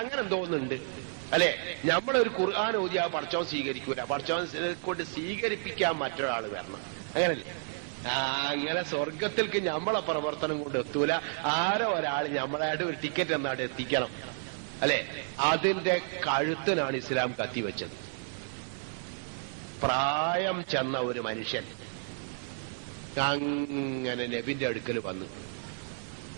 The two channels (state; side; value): silent; left; digital silence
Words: തോന്നുന്നുണ്ട് അല്ലെ. നമ്മളൊരു ഖുർആൻ ഓതിയാ പടച്ചോൻ സ്വീകരിക്കൂല, പടച്ചോൻ കൊണ്ട് സ്വീകരിപ്പിക്കാൻ മറ്റൊരാൾ വരണം, അങ്ങനല്ലേ? അങ്ങനെ സ്വർഗത്തിലേക്ക് നമ്മളെ പ്രവർത്തനം കൊണ്ട് എത്തൂല. ആരോ ഒരാൾ നമ്മളായിട്ട് ഒരു ടിക്കറ്റ് എന്നാട്ട് എത്തിക്കണം അല്ലെ. അതിന്റെ കഴുത്തിനാണ് ഇസ്ലാം കത്തിവെച്ചത്. പ്രായം ചെന്ന ഒരു മനുഷ്യൻ അങ്ങനെ നബിന്റെ അടുക്കൽ വന്നു.